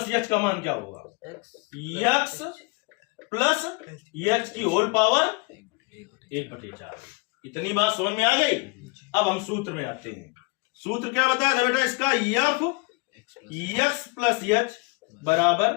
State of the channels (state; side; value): quieter; right; 28.8 dB